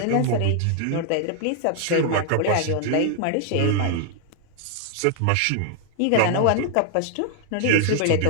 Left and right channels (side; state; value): both; different; correlation 0.00